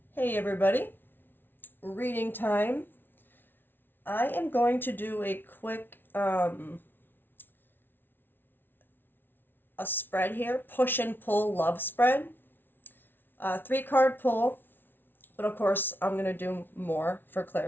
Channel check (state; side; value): late; right; 0.099 ms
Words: Hey everybody, reading time. I am going to do a quick a spread here, push and pull love spread. 3 card pull, but of course I'm going to do more for